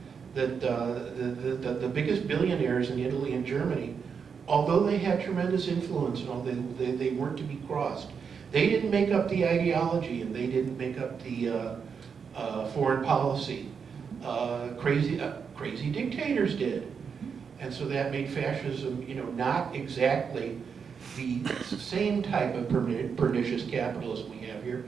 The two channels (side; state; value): left; quieter; 6.3 dB